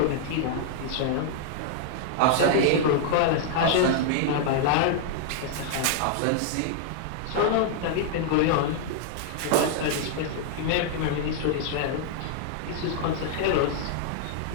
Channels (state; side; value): different; both; correlation -0.01